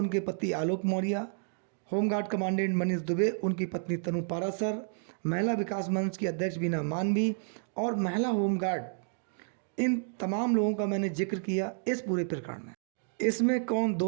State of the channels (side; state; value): left; silent; digital silence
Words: पति आलोक मौर्य, होमगार्ड कमांडेंट मनीष दुबे, उनकी पत्नी तनु पाराशर, महिला विकास मंच की अध्यक्ष बीना मानवी और महिला होमगार्ड, इन तमाम लोगों का मैंने जिक्र किया इस पूरे प्रकरण में। इसमें कौन